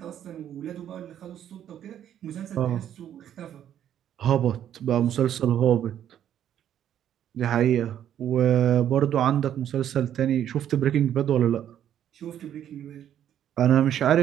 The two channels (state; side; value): quieter; left; 10.4 dB